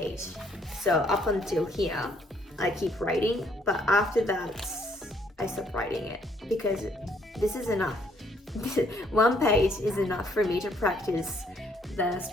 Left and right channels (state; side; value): normal; both; correlation 0.67